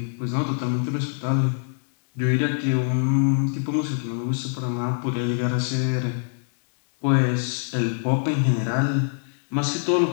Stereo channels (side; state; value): right; silent; digital silence